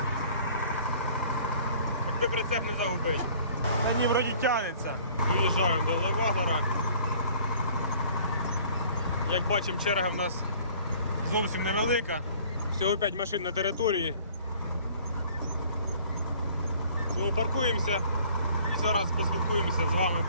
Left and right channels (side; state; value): both; inverted; correlation -0.53